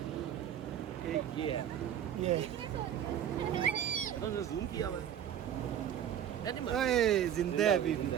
ये जूम किया हुआ है। जिंदा है अभी भी।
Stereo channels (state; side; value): quieter; left; 9.9 dB